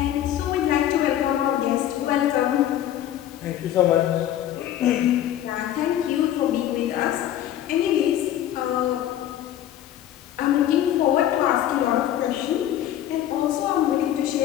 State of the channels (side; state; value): right; quieter; 11.7 dB